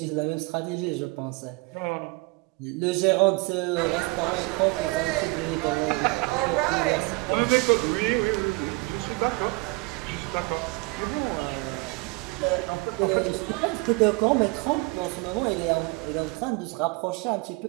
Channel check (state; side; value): quieter; left; 26.3 dB